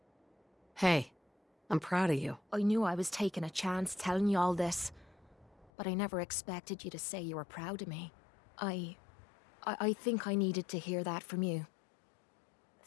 Hey, I'm proud of you. I knew I was taking a chance telling you all this, but I never expected you to say you were proud of me. I think I needed to hear that from you.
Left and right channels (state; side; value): drops out; right; at 5.7 s